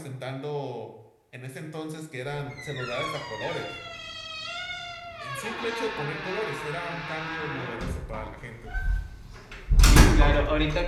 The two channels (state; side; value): identical; both; correlation 1.00